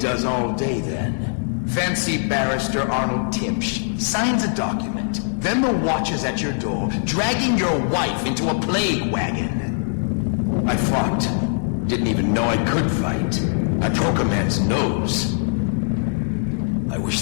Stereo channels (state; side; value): silent; right; 64 dB below the other